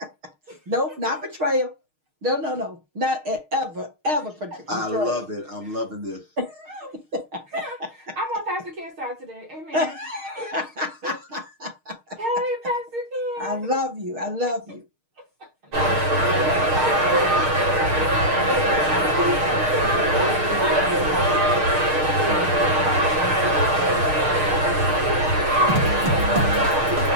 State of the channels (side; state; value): left; late; 6.5 ms